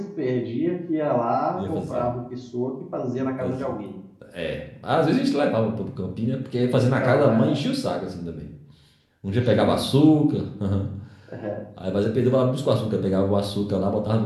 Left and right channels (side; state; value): both; identical; correlation 1.00